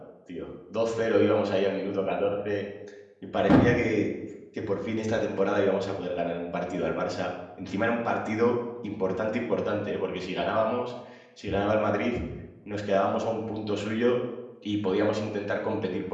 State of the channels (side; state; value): both; identical; correlation 1.00